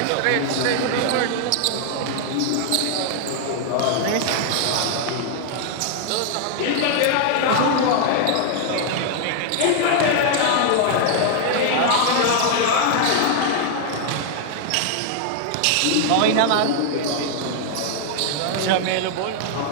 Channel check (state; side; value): different; both; correlation 0.00